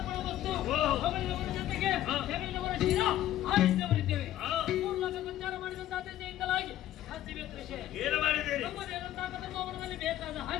ವಸ್ತು, ಹೊಗಳಿದವರ ಜೊತೆಗೆ ಹೆಗಲಿನವರ ಶಿರ ಆರಿಸಿದವರಿದ್ದೇವೆ. 3 ಲೋಕ ಸಂಚಾರ ಮಾಡಿದಂತಹ ದೆಸೆಯಿಂದಲಾಗಿ ಏನು ಮಾಡಿದ್ದೀರಿ? ಧರ್ಮದಲ್ಲಿ ಬೇಕಾದ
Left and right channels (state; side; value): quieter; right; 13.0 dB